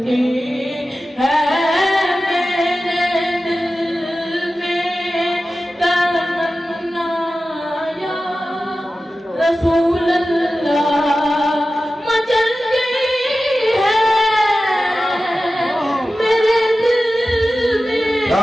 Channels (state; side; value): normal; both; correlation 0.94